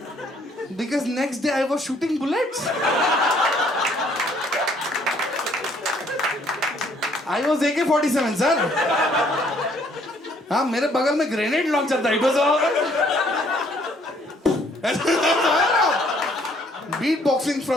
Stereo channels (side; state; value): both; normal; correlation 0.63